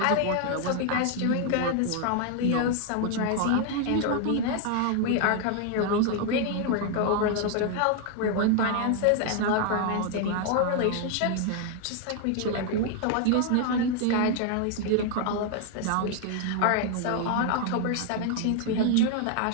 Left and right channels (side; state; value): both; different; correlation 0.00